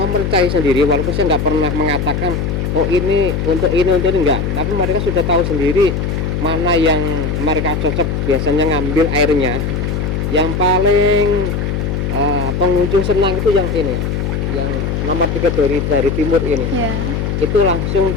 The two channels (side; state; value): left; noise; hum, 1 dB below the sound